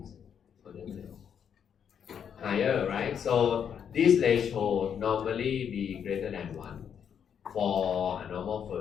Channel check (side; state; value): right; quieter; 8.0 dB